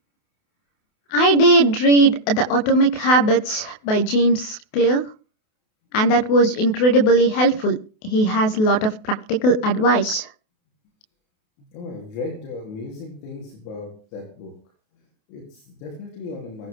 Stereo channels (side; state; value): right; late; 28 ms